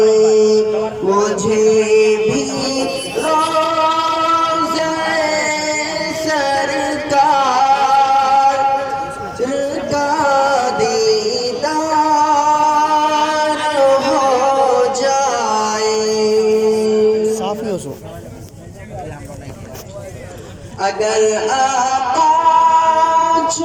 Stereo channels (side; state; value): both; identical; correlation 1.00